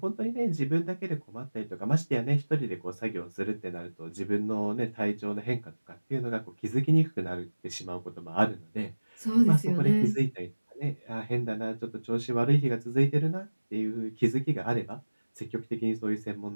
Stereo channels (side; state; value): both; inverted; correlation -1.00